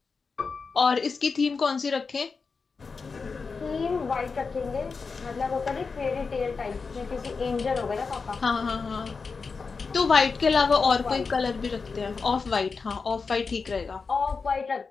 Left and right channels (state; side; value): quieter; right; 4.8 dB